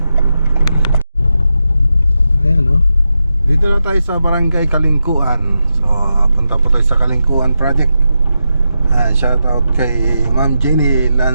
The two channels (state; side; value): inverted; both; correlation -0.87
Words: Ayan, no? Dito na tayo sa barangay Kalingkuan. So punta po tayo sa Kalingkuan project. Shout out kay Ma'am Jenny